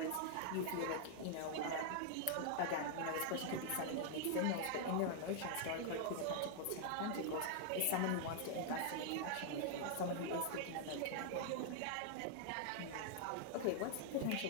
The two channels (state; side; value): different; both; correlation 0.00